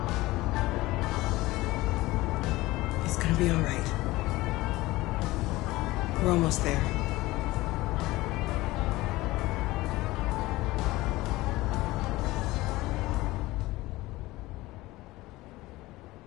It's gonna be all right. We're almost there.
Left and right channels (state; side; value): quieter; right; 19.1 dB